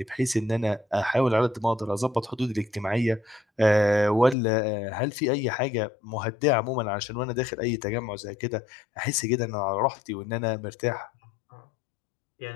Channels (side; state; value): right; drops out; at 4.4 s